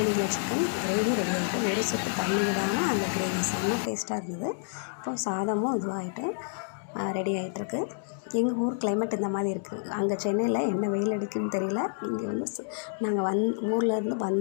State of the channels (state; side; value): silent; right; digital silence